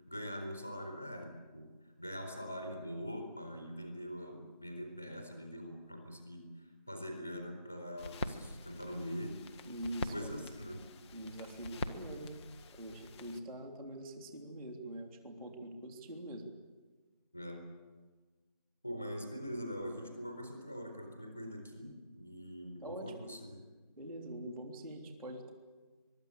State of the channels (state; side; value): inverted; both; correlation -0.76